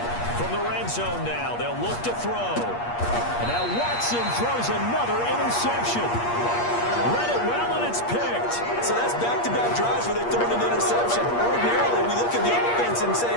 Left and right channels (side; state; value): right; late; 8.5 ms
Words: From the red zone now, they'll look to throw. And now Watson throws another interception. Read it well, and it's picked. So that's back-to-back drives where they've thrown an interception. Ordinarily, we look at the offense and say,